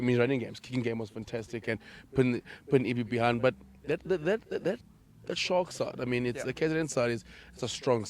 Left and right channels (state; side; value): identical; both; correlation 1.00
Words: his running games. Kicking game was fantastic and putting EB behind. But that Shark side, I mean, the KZN side it's a strong